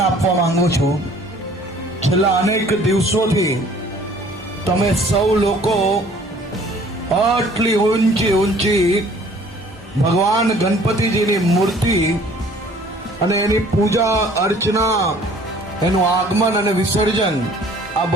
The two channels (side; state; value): both; normal; correlation 0.53